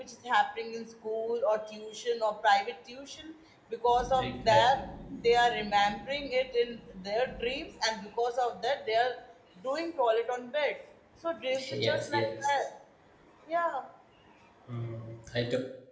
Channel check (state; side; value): identical; both; correlation 1.00